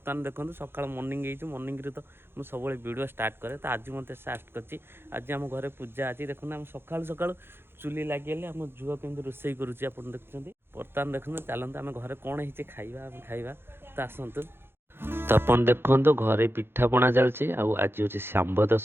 देखो सका मर्निंग मर्निंग तो मुझे सब वीडियो स्टार्ट करे तो आज मत स्टार्ट कर आज आम घर पूजा आज देखो आम सका सका चुली लगे आम झुआ कमी रोषे करुच्ची आप देखुं बर्तमान देखो चलते आम घर कौन है खाइबा खाइबा तो आसतु तो अपन देखो घरे पिठापଣା चलती आज हूँ सांब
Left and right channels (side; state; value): left; late; 0.11 ms